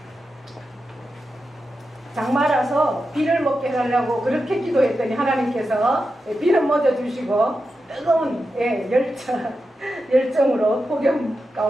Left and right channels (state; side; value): normal; both; correlation 0.89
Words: 장마라서 비를 먹게 해달라고 그렇게 기도했더니 하나님께서 비를 먹여주시고 뜨거운 열정으로 폭염